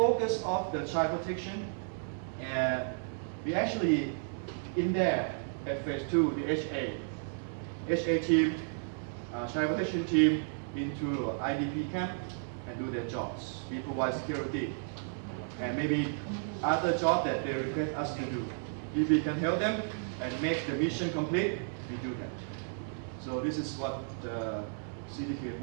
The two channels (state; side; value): silent; left; digital silence